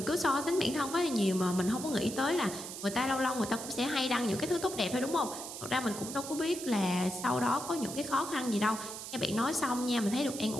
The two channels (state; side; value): noise; right; hiss, 9 dB below the sound